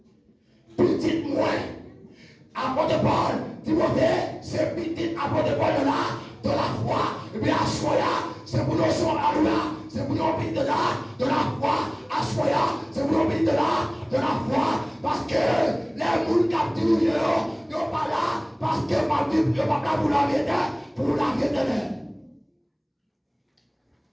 Petit moins. Apôtre de Paul, Timothée, c'est petit apôtre de Paul dans la foi. Et puis à Soya, c'est pour nous c'est pour nous de la foi. À Soya, c'est pour nous de la foi. Parce que les moules capturent, ils ne sont pas là. Parce que ma Bible n'est pas là pour la vérité.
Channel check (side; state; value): both; identical; correlation 1.00